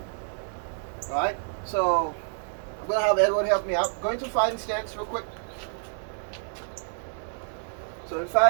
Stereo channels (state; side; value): silent; left; 59 dB below the other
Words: All right. So I'm gonna have Edward help me out. Go into fighting stance real quick. So in